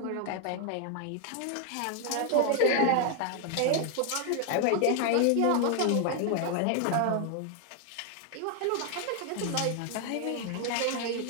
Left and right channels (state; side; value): different; both; correlation 0.00